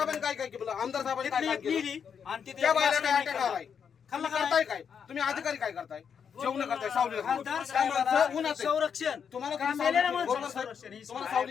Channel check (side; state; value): right; quieter; 7.2 dB